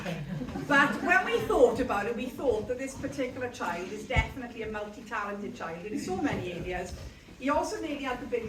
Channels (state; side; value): identical; both; correlation 1.00